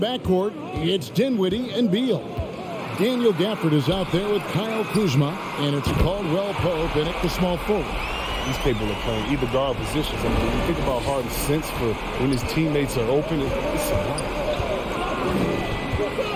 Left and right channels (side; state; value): both; identical; correlation 1.00